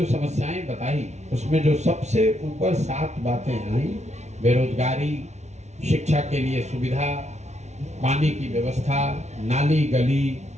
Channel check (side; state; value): left; late; 0.32 ms